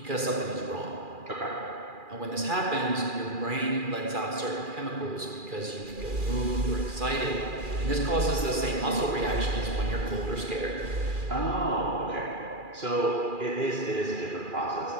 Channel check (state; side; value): late; left; 2.4 ms